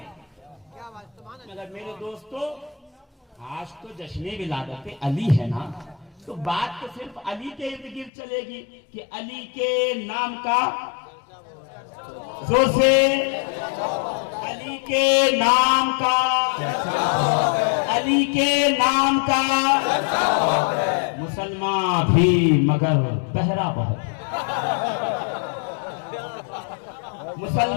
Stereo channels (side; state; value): right; drops out; at 8.1 s